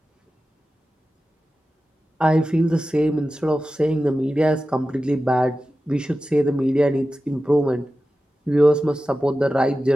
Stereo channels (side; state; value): both; normal; correlation 0.94